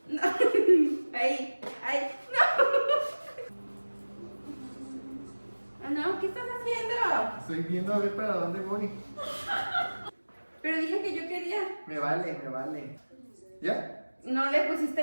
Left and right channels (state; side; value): inverted; both; correlation -1.00